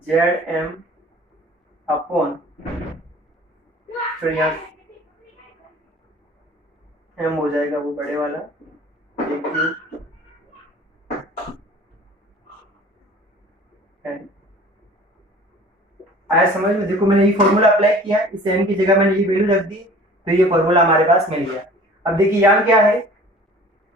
Zm अपॉन, यहाँ m हो जाएगा वो बड़े वाला आया समझ में? देखो मैंने ये फॉर्मूला अप्लाई किया, इस m की जगह मैंने ये वैल्यू रख दी, तो ये फॉर्मूला हमारे पास मिल गया। अब देखिए यहाँ क्या है,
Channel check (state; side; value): normal; both; correlation 0.47